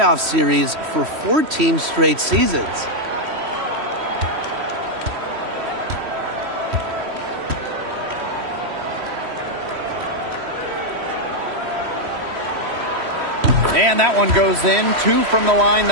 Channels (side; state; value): left; late; 3.1 ms